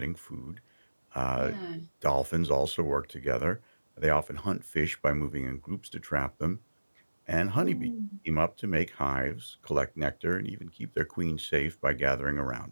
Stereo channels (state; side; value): inverted; both; correlation -1.00